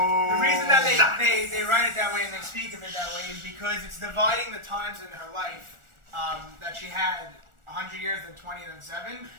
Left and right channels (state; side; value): late; left; 1.4 ms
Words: reason that they write it that way and they speak of it that way is because it's dividing the times in her life that she had 100 years, then 20, then 7.